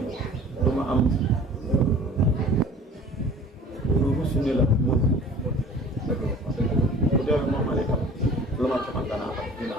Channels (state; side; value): normal; both; correlation 0.46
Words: du ma am lu rusu ni la mën bu dee moom ma itam lu ma ci man danaa